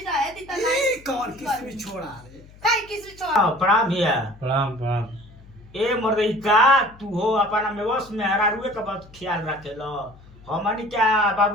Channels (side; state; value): left; noise; hum, 23 dB below the sound